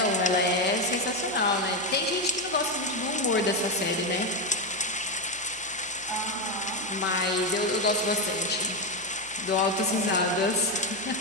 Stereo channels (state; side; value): noise; right; hum, 24 dB below the sound